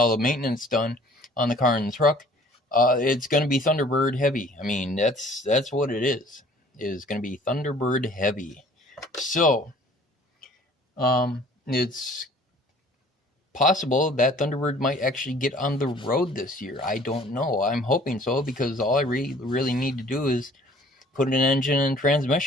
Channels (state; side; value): normal; both; correlation 0.53